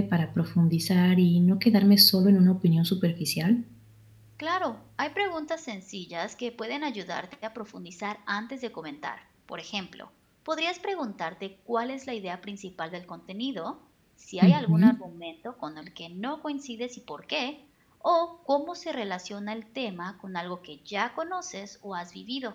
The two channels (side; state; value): both; identical; correlation 1.00